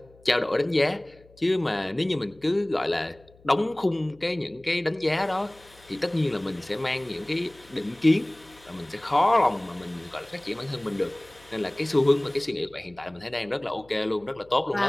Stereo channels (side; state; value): left; noise; hum, 27 dB below the sound